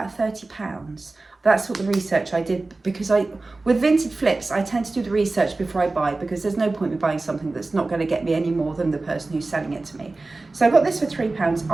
£30. That's what the research I did, because with Vinted flips, I tend to do the research before I buy, because there's no point in buying something that's not going to get me any more than the person who's selling it to me. So I got this for £3.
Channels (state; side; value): quieter; left; 3.3 dB